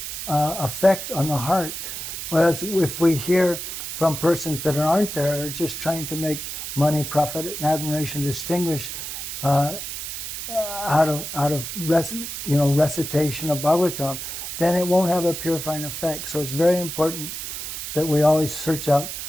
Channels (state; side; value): noise; right; hiss, 6 dB below the sound